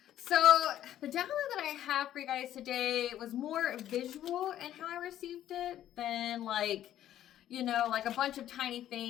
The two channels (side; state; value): right; quieter; 11.9 dB